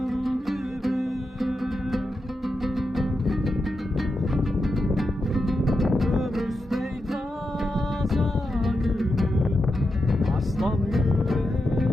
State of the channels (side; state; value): both; normal; correlation 0.88